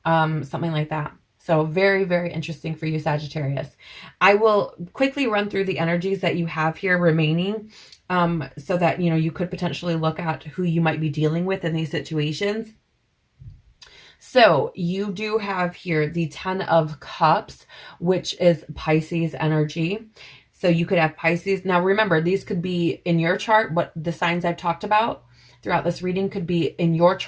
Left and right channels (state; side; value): identical; both; correlation 1.00